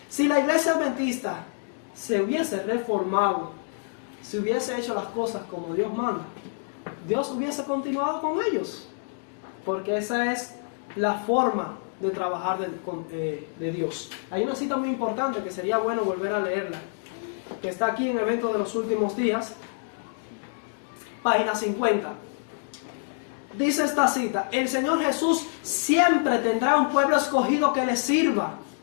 Si la iglesia adventista se hubiese reformado, si hubiese hecho las cosas como Dios manda, Dios hubiese continuado con ellos, porque esa es la forma de trabajar de Dios. Hay una cita muy importante que sería bueno volver a leerla, que está aquí en Eventos de los Últimos Días, página 50. Dice esta cita: el Señor Jesús siempre tendrá un pueblo escogido que le sirva.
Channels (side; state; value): right; silent; digital silence